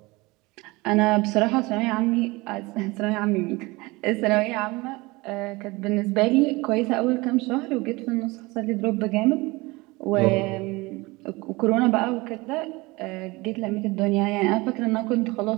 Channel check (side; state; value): left; quieter; 23.1 dB